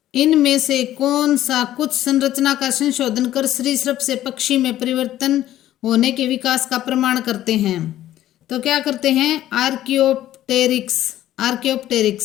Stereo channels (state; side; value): quieter; right; 13.3 dB